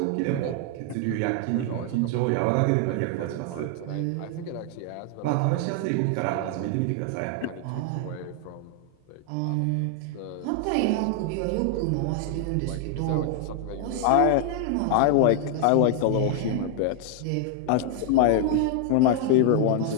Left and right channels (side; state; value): both; different; correlation 0.00